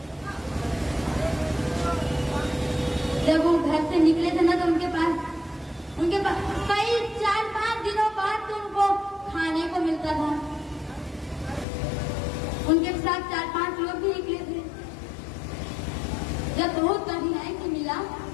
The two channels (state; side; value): drops out; right; at 11.7 s